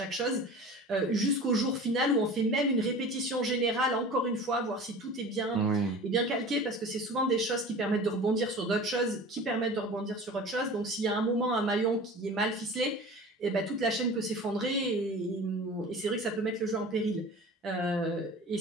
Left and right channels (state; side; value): normal; both; correlation 0.38